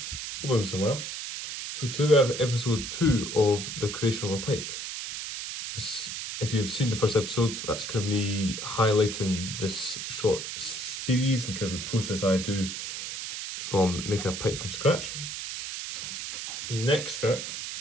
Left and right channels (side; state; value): right; noise; hiss, 6 dB below the sound